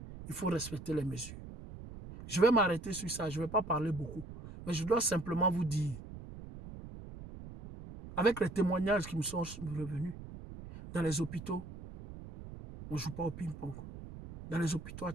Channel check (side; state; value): right; noise; rumble, 13 dB below the sound